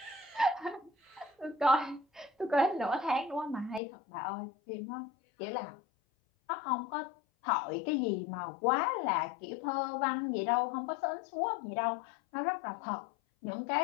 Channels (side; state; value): right; drops out; at 3.8 s